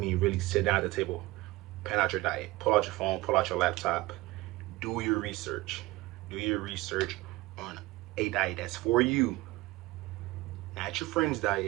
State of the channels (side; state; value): left; quieter; 19.9 dB